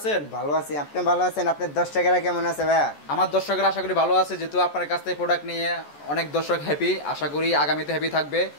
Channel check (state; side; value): late; right; 14 ms